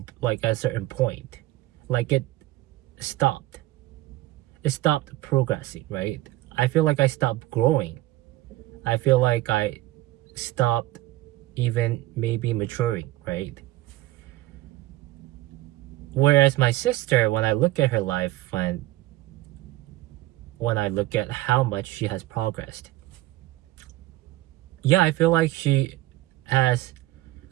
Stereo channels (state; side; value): quieter; left; 17.3 dB